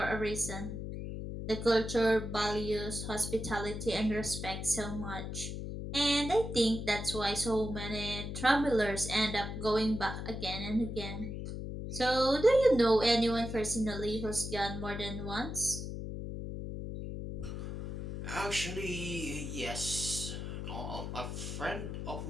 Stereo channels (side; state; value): left; noise; hum, 6 dB below the sound